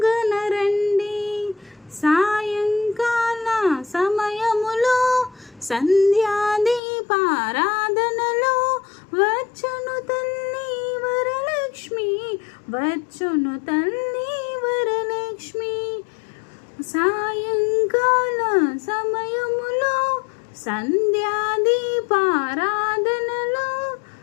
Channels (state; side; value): drops out; right; at 6.8 s